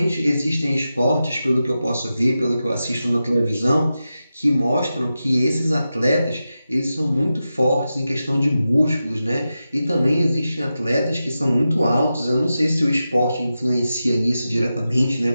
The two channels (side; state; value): both; inverted; correlation -0.91